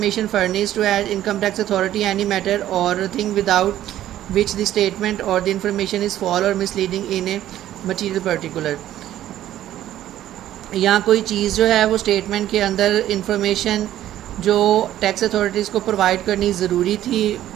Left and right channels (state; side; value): quieter; left; 12.7 dB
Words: furnished to an income tax authority any matter or thing without which the statement or the information is false or misleading in a material particular, या कोई चीज़ जो है वो statement के अंदर information जो tax authorities को provide करनी ज़रूरी थी